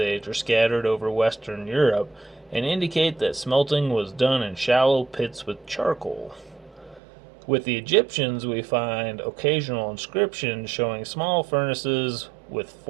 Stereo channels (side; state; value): left; drops out; at 7.0 s